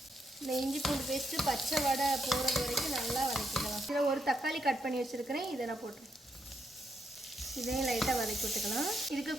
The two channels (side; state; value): both; normal; correlation 0.78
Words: இந்த இஞ்சி பூண்டு பேஸ்ட்டு பச்சை வடை போகிறது வரைக்கும் நல்லா வதக்கிக்கலாம். இதில் ஒரு தக்காளி கட் பண்ணி வச்சுருக்கிறேன், இதை நான் போட்டுருக்கேன். இதையும் லைட்டாக வதக்கி விட்டுக்கலாம். இதுக்கு